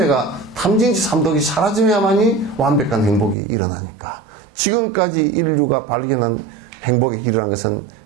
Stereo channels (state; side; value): drops out; left; at 3.4 s